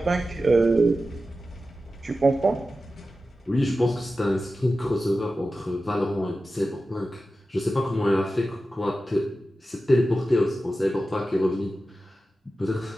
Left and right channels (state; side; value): normal; both; correlation 0.93